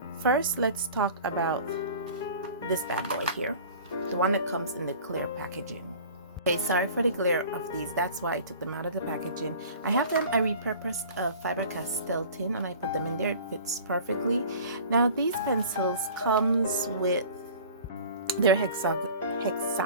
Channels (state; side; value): inverted; both; correlation -0.43